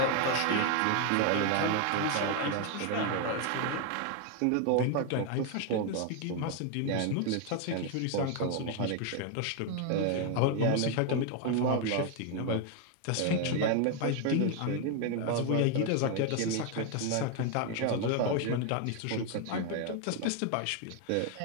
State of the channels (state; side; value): different; both; correlation 0.01